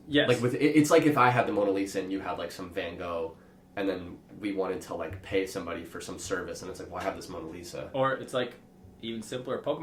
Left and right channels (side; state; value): both; identical; correlation 1.00